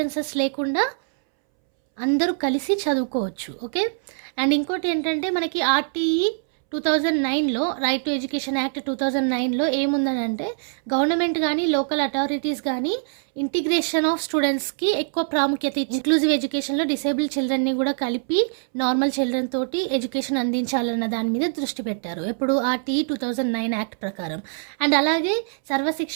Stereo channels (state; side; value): silent; left; 63 dB below the other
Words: లేకుండా అందరూ కలిసి చదువుకోవచ్చు. ఓకే, అండ్ ఇంకోటి ఏంటంటే మనకి ఆర్టీఈ 2009లో రైట్ టు ఎడ్యుకేషన్ యాక్ట్ 2009లో ఏముందని అంటే గవర్నమెంట్ కానీ లోకల్ అథారిటీస్ కానీ ఇంటిగ్రేషన్ ఆఫ్ స్టూడెంట్స్కి ఎక్కువ ప్రాముఖ్యత ఇచ్చి ఇంక్లూజివ్ ఎడ్యుకేషన్లో డిసేబుల్డ్ చిల్డ్రన్ని కూడా కలిపి నార్మల్ చిల్డ్రన్ తోటి ఎడ్యుకేషన్ అందించాలన్న దాని మీద దృష్టి పెట్టారు. ఎప్పుడు ఆర్టీఈ 2009 యాక్ట్ ప్రకారం. అండ్ అలాగే